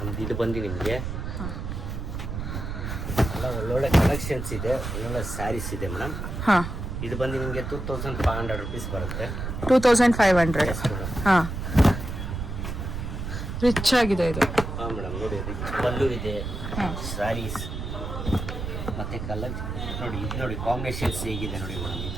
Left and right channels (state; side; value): noise; right; rumble, 5 dB below the sound